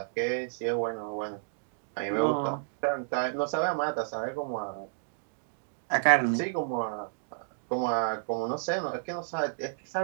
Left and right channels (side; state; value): left; silent; digital silence